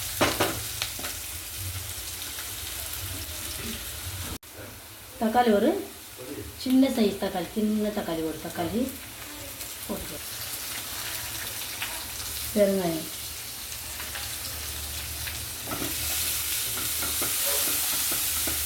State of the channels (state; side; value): identical; both; correlation 1.00